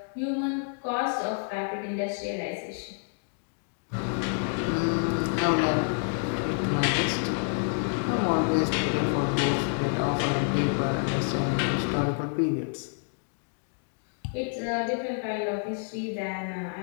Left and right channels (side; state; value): right; silent; 59 dB below the other